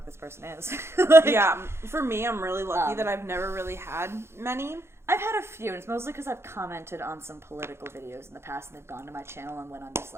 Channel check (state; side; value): late; left; 0.12 ms